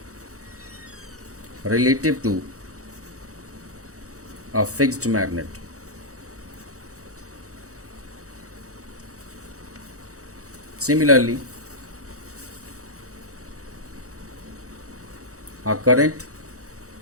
relative to a fixed magnet. Similarly, a current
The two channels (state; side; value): late; left; 0.65 ms